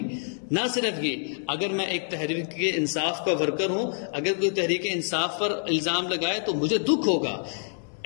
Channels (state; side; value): silent; right; digital silence